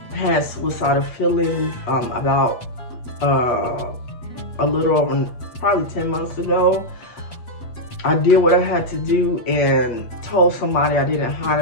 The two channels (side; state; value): right; late; 8.4 ms